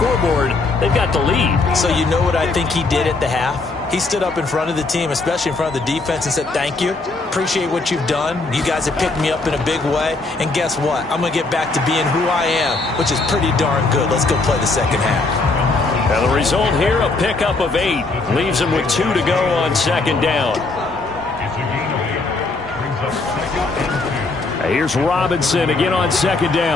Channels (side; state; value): right; quieter; 3.5 dB